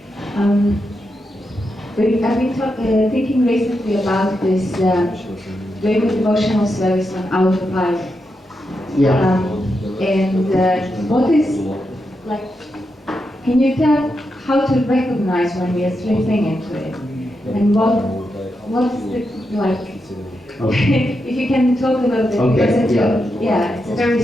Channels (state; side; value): normal; both; correlation 0.86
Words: I've been thinking recently about this doing the devotional service on autopilot. Yeah. What is, can you tell how to recognize when we are slipping into it? And what's the, Okay. if you can talk a little bit, Okay, because it's a very